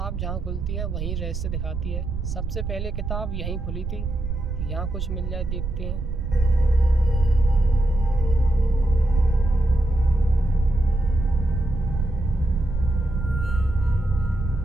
जहाँ खुलती है वहीं रहस्य दिखाती है। सबसे पहले किताब यहीं खुली थी, यहाँ कुछ मिल जाए देखते हैं।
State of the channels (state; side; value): noise; right; rumble, 4 dB below the sound